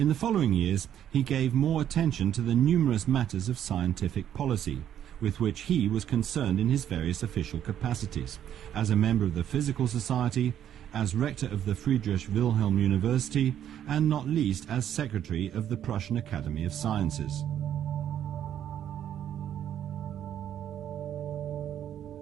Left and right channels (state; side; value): quieter; left; 10.3 dB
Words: the following years, he gave more attention to the numerous matters of scientific policy, with which he was concerned in his various official capacities, as a member of the Physical Society, as rector of the Friedrich Wilhelm University, and not least as secretary of the Prussian Academy of Sciences.